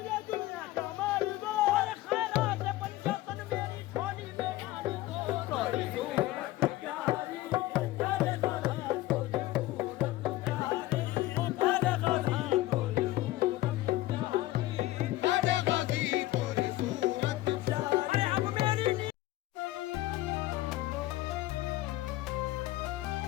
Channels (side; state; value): right; quieter; 17.0 dB